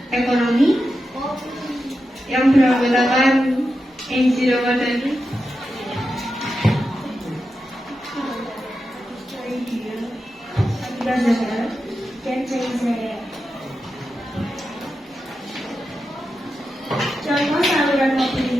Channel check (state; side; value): normal; both; correlation 0.89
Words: ekonomi yang beranggotakan Enzi Ramadhani, Abdullah Zahra, dan Zaizaya. Contoh saluran